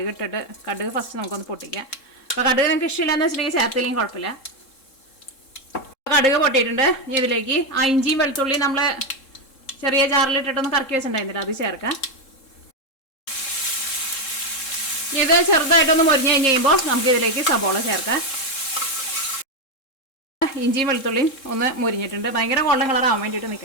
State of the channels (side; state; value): right; late; 3.7 ms